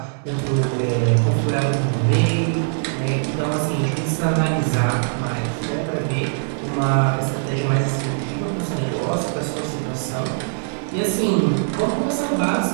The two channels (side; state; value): left; silent; digital silence